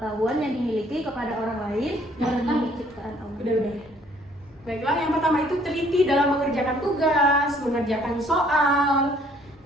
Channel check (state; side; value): normal; both; correlation 0.61